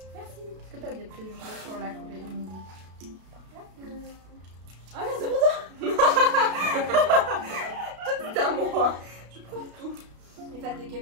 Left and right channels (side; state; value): left; late; 32 ms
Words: Merci. Est-ce que t'as des préjugés sur la Corée? Ah mais c'est pour toi. C'est à moi. Je prends tout. Les fans de